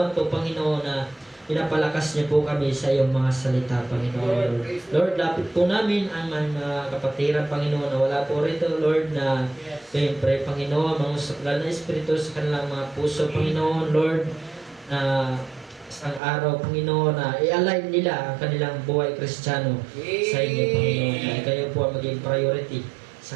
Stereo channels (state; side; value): drops out; left; at 16.2 s